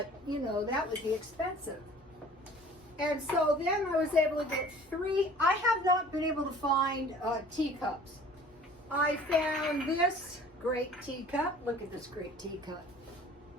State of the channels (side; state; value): both; normal; correlation 0.49